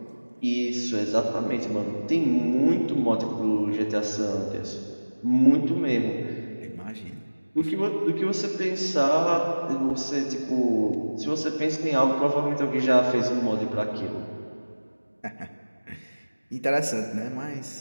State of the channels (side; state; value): both; inverted; correlation -1.00